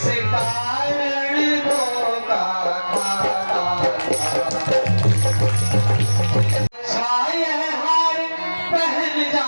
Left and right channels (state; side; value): inverted; both; correlation -1.00